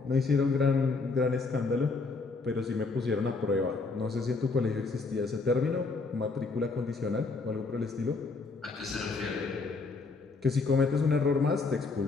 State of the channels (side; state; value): right; quieter; 4.0 dB